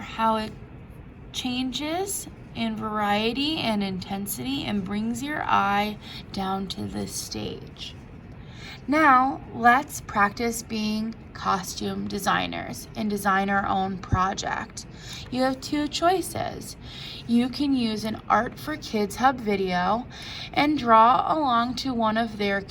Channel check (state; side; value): identical; both; correlation 1.00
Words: how it changes in variety and intensity and brings your eye down to the stage. Now, let's practice being costume designers and design our own project. You have 2 choices. You can use an Art for Kids Hub video and draw along to one of their